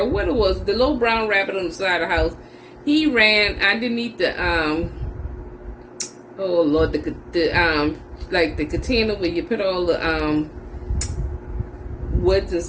What it was, the little brown rabbit on the side of the house, he ran underneath the oh Lord, the like the container where you put all the woods and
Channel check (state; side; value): identical; both; correlation 1.00